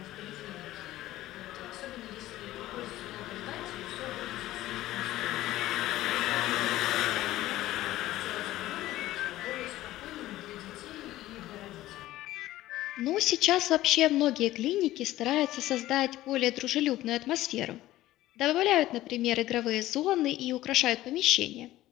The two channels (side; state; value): right; quieter; 15.5 dB